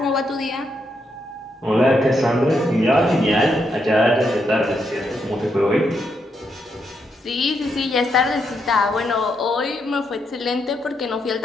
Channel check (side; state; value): both; normal; correlation 0.79